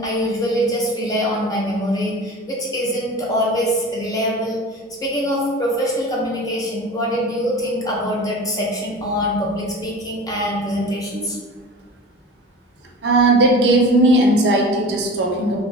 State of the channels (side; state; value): both; normal; correlation 0.36